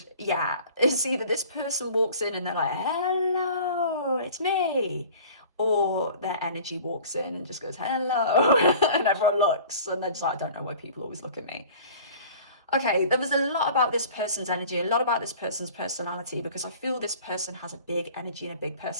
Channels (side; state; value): both; inverted; correlation -0.45